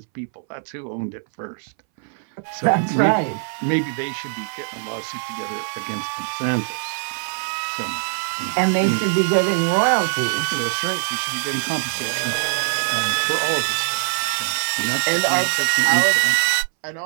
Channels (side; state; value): left; silent; 61 dB below the other